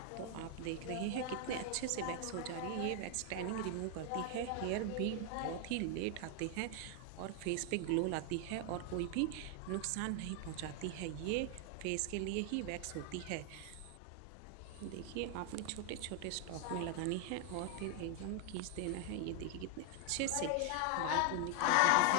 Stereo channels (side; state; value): both; different; correlation 0.00